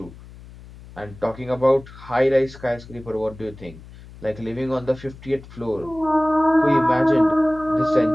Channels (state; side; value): noise; left; hum, 19 dB below the sound